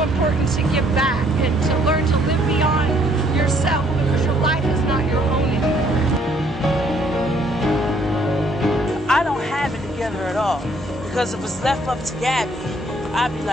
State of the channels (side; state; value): both; normal; correlation 0.64